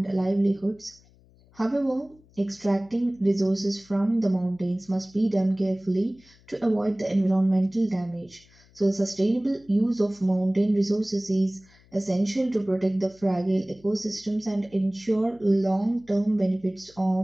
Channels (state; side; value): noise; left; hum, 29 dB below the sound